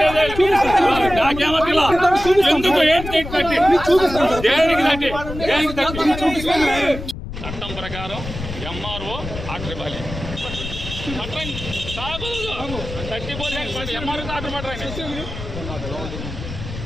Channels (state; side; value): noise; left; rumble, 9 dB below the sound